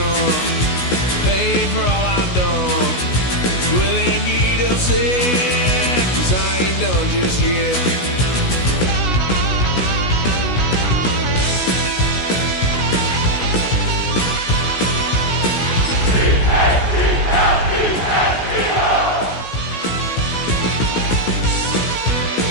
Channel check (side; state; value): right; late; 16 ms